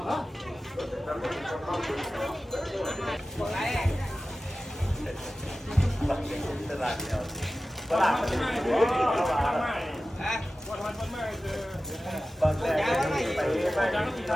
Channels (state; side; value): normal; both; correlation 0.95